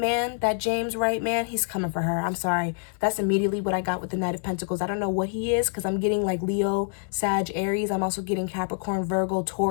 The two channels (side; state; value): right; silent; 61 dB below the other